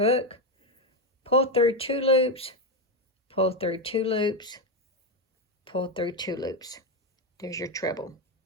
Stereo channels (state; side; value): normal; both; correlation 0.10